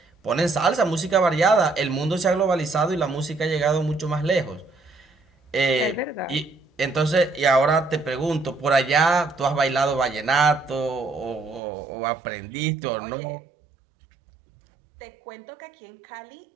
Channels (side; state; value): left; drops out; at 11.6 s